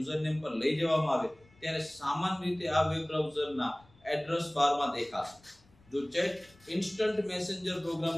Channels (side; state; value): left; noise; rumble, 29 dB below the sound